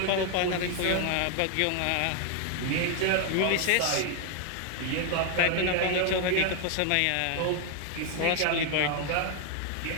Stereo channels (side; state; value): both; different; correlation 0.00